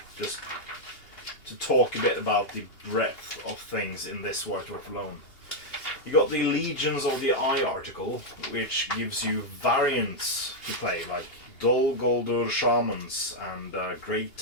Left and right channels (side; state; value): right; late; 2.8 ms